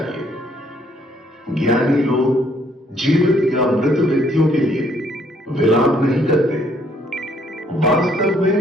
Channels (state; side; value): normal; both; correlation 0.66